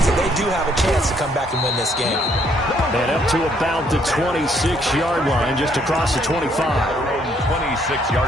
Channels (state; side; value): normal; both; correlation 0.68